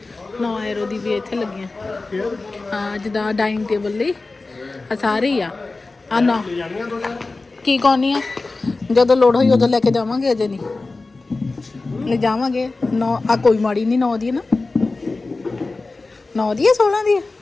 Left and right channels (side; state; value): right; quieter; 3.5 dB